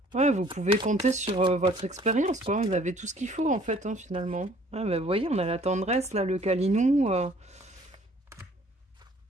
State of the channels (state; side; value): normal; both; correlation 0.56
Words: Ouais, vous pouvez compter sur votre expérience, quoi. Vous avez tout ce qu'il faut, en fait, hein, finalement. Ouais, bah, vous voyez, on a la tendresse, là, le câlinou.